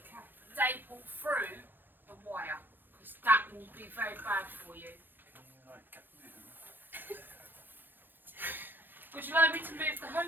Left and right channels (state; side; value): late; left; 0.093 ms